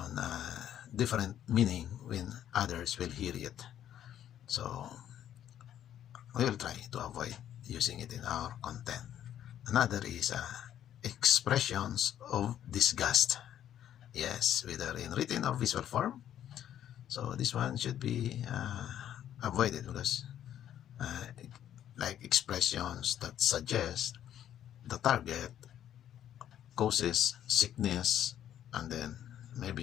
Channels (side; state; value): right; quieter; 10.8 dB